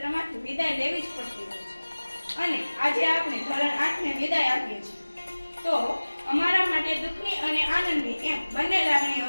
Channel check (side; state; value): both; inverted; correlation -1.00